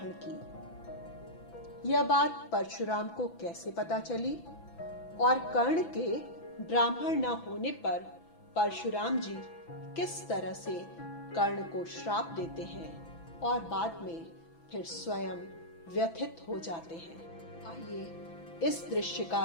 की। यह बात परशुराम को कैसे पता चली और कर्ण के ब्राह्मण न होने पर परशुराम जी किस तरह से कर्ण को श्राप देते हैं और बाद में फिर स्वयं व्यथित हो जाते हैं। आइए इस दृश्य का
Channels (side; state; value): right; late; 6.0 ms